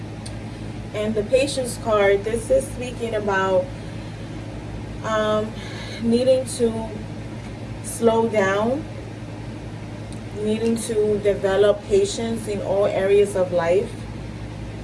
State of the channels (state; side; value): identical; both; correlation 1.00